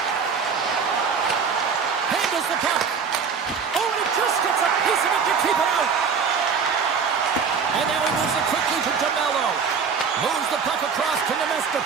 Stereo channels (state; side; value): quieter; left; 6.1 dB